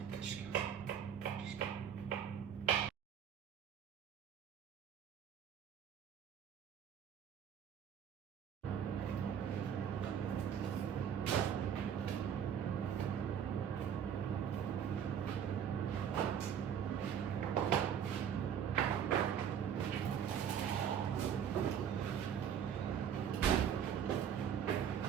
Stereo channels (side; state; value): left; quieter; 8.5 dB